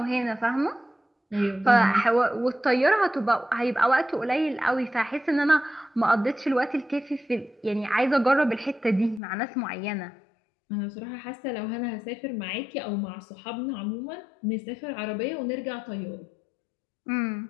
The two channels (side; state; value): right; drops out; at 9.2 s